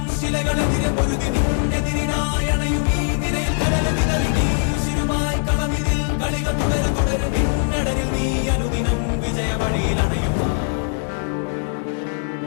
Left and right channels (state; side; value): silent; right; 58 dB below the other